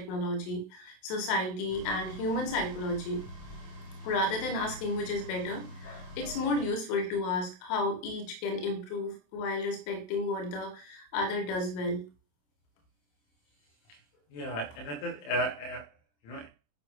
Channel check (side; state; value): right; late; 27 ms